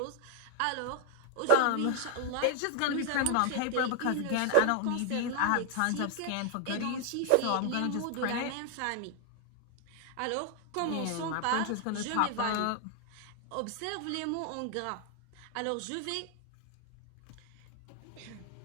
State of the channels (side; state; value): both; different; correlation 0.00